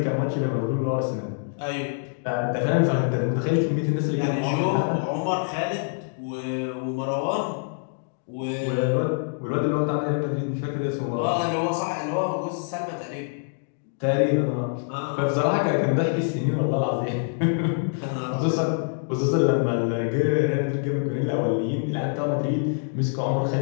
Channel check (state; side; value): silent; right; digital silence